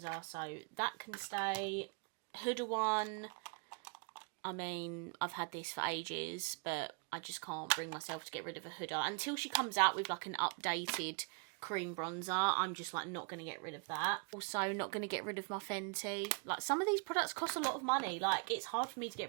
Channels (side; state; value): left; quieter; 37.1 dB